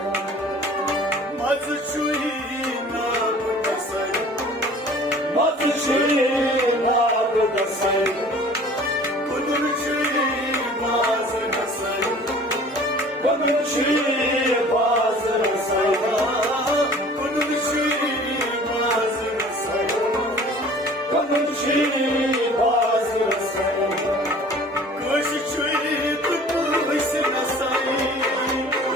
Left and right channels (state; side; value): normal; both; correlation 0.47